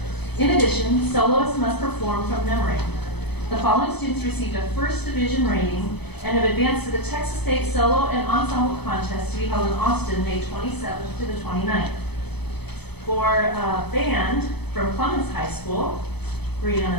In addition, soloists must perform from memory. The following students received a first division rating and have advanced to the Texas State Solo and Ensemble Contest to be held in Austin, May 27th to the 29th. For band from Clemens High School,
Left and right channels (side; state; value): right; late; 0.98 ms